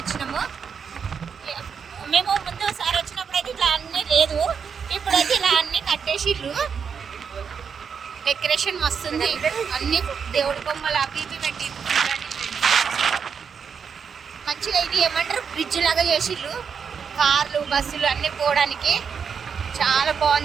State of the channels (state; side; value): quieter; left; 6.6 dB